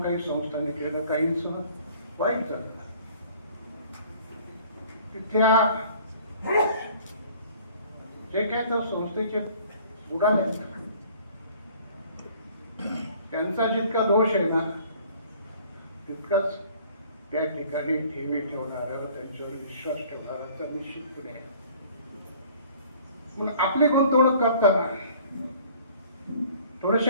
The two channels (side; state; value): both; inverted; correlation -0.52